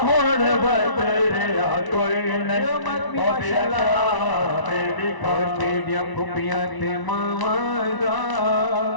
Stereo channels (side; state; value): right; late; 1.0 ms